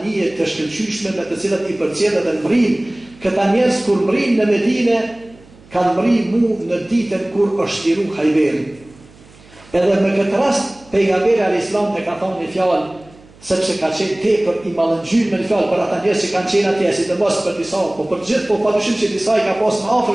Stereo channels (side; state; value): right; noise; hum, 25 dB below the sound